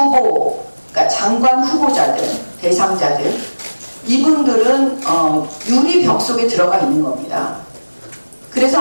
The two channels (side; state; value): both; inverted; correlation -1.00